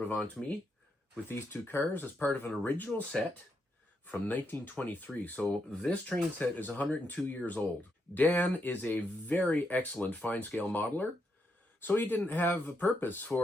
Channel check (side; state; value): both; normal; correlation 0.80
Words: on to me with these two cars as part of an original set from 1923. So this train set is 102 years old. Dan is a very excellent fine-scale modeler. So he didn't have a purpose